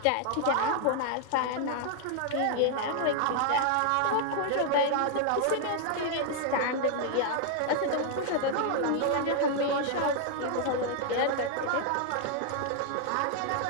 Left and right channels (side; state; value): both; different; correlation -0.01